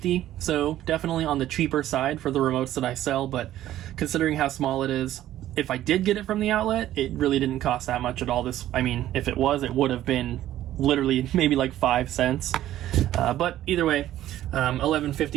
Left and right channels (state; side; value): quieter; left; 13.2 dB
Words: so definitely on the cheaper side for the remotes that I sell, but considering how small it is, if I did get it from the outlet, it really didn't cost that much at all. If it was, it would have been literally maybe like 5 cents. But either way,